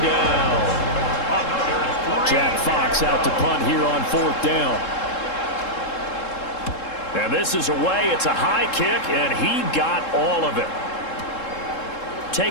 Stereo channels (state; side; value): late; right; 3.7 ms